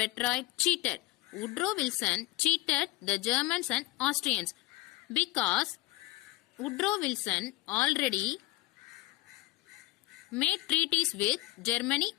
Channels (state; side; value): quieter; right; 18.6 dB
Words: Cheated. Woodrow Wilson cheated the Germans and Austrians because Woodrow Wilson already made treaties with Germany